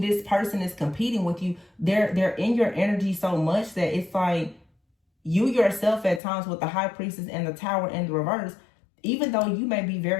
this person is competing with you. They're in your energy so much that it's like you yourself at times with the High Priestess and the Tower in the reverse, even though you may be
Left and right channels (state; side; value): drops out; right; at 6.2 s